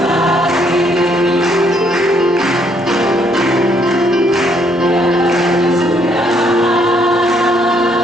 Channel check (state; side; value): normal; both; correlation 0.69